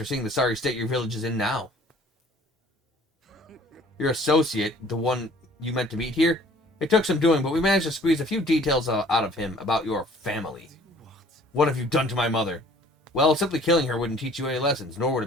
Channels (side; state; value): both; normal; correlation 0.54